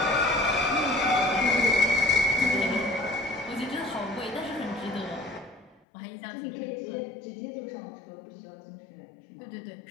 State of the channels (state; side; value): drops out; right; at 5.8 s